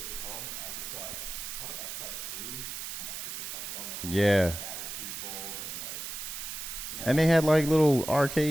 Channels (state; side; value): noise; right; hiss, 6 dB below the sound